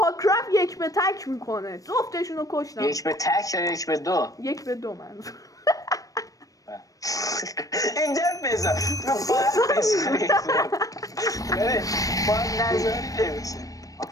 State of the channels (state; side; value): late; right; 0.17 ms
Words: کرافت یک به تک میکنه. جفتشونو کشتم. یک به تک یا یک به دو؟ یک به دو من اینجا بذار باید بذاری باید نظاری نمیشه.